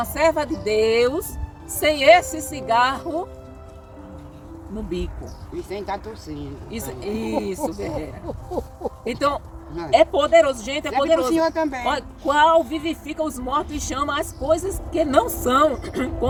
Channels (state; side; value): identical; both; correlation 1.00